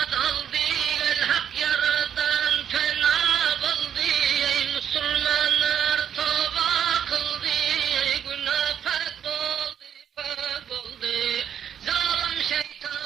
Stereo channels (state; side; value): quieter; left; 9.0 dB